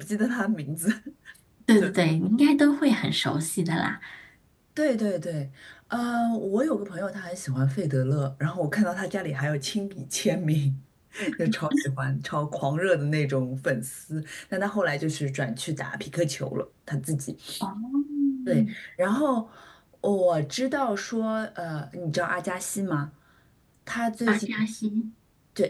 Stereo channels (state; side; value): identical; both; correlation 1.00